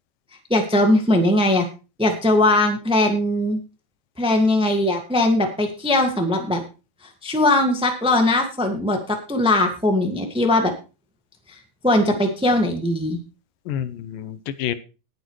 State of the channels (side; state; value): both; normal; correlation 0.44